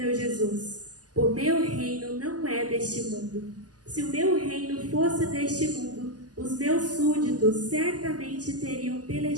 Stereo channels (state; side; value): late; left; 0.68 ms